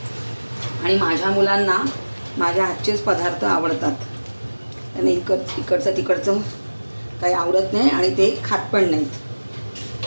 आणि माझ्या मुलांना माझ्या हातचेच पदार्थ आवडतात। आणि इकडचं तिकडचं काही आवडत नाही आणि ते खात पण नाहीत।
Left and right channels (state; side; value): inverted; both; correlation -1.00